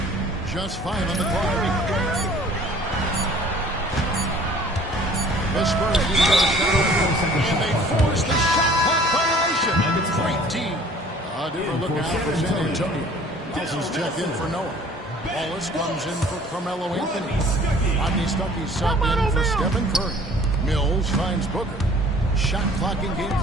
Just 5 on the clock. The Spurs need to get a shot, and they force the shot clock violation. Great team. A different look out for San Antonio. Nelson's checked in for Noah. Wallace comes in for Carmelo Anthony. Rodney Stuckey's subbed in for Stephen Curry. Mills finds Booker. Shot clock and game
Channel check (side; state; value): both; normal; correlation 0.51